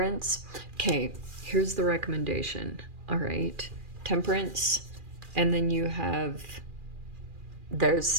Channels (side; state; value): left; late; 2.4 ms